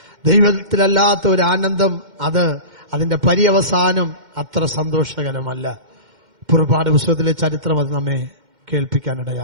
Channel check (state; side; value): late; left; 2.1 ms